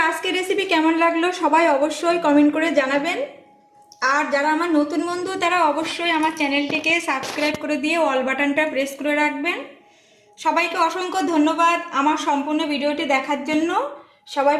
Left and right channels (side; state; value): both; identical; correlation 1.00